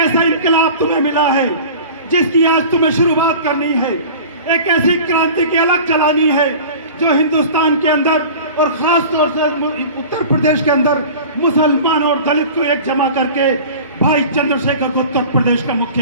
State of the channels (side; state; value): both; inverted; correlation -0.39